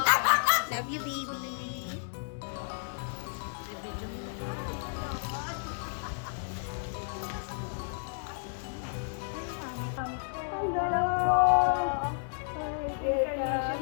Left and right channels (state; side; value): silent; right; digital silence